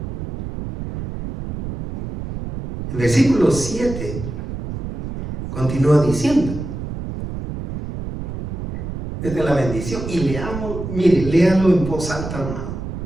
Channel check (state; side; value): noise; right; rumble, 7 dB below the sound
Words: El versículo 7 continúa diciendo, esta es la bendición, y leamos, mire, léalo en voz alta, hermano.